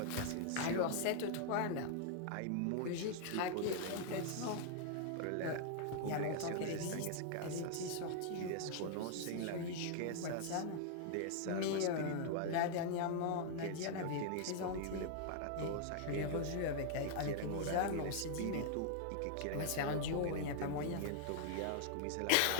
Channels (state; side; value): different; both; correlation -0.01